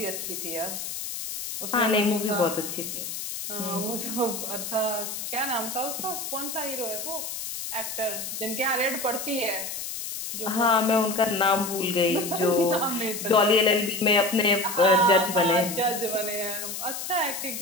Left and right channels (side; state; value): left; noise; hiss, 6 dB below the sound